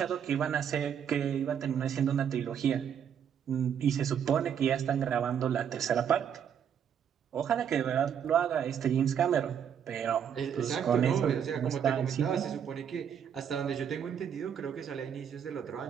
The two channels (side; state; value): left; quieter; 8.3 dB